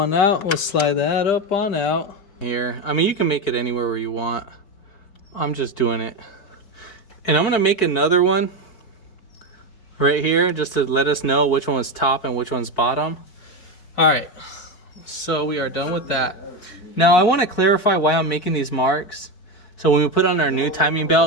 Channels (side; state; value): right; late; 4.7 ms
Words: out. We'll slide that up on out here. I mean, you can make it anywhere where you want. I'm just doing it. And I'm going to make another one right here just to let us know which one was top and which one's bottom. All right, so we are done with that. Now I want to clarify why I'm making these marks. So when we put on our new timing